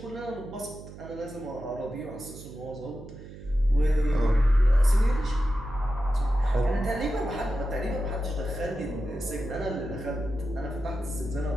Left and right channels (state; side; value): noise; right; hum, 15 dB below the sound